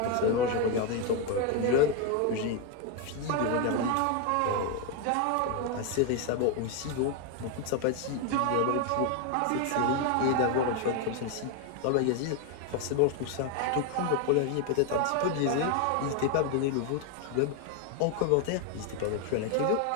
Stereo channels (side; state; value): both; different; correlation 0.01